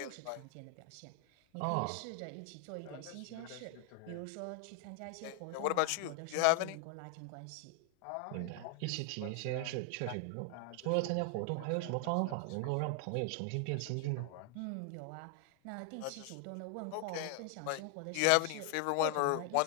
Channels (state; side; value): different; both; correlation 0.00